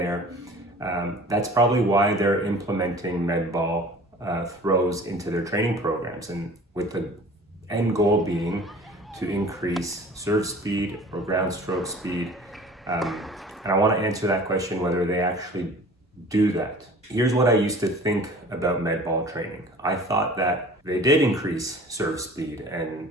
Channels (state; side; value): normal; both; correlation 0.45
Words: that's probably why they're implementing med ball throws into their training programs, and with the end goal being to increase serve speed or ground stroke speed. And I want to answer that question, whether they actually do that. Here's what I used to think about med ball training. I thought that they did increase serve speed and